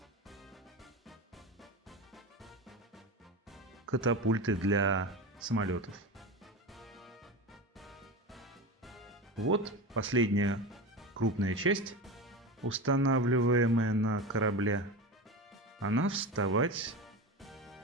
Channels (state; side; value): normal; both; correlation 0.25